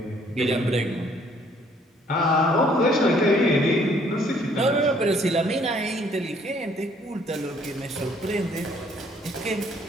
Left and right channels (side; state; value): both; normal; correlation 0.63